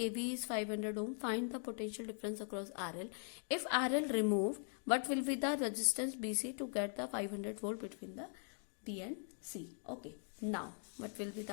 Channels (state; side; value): silent; right; 50 dB below the other